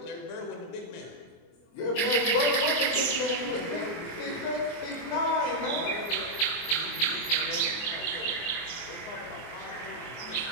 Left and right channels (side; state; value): right; late; 23 ms